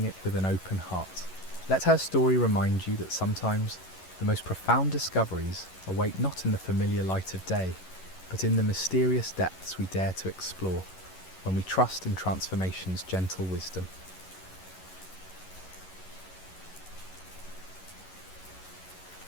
it with an open heart. Let her story remind you that sometimes the most profound discoveries await not in the familiar light of day, but in the mysterious depths we dare to explore when we trust in transformation's gentle wisdom.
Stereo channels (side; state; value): right; late; 11 ms